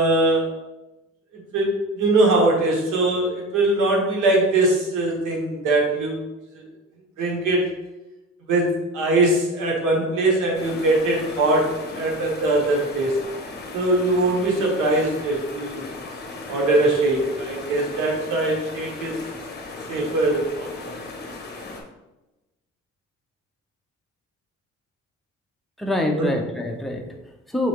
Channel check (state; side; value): normal; both; correlation 0.32